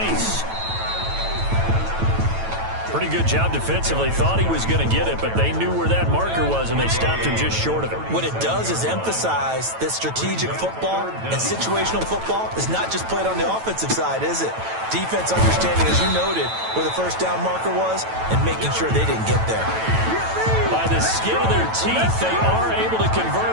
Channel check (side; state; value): left; late; 9.1 ms